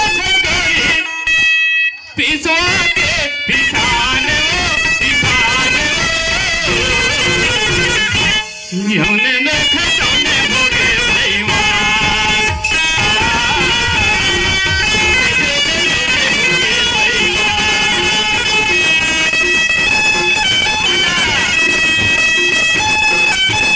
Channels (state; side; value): identical; both; correlation 1.00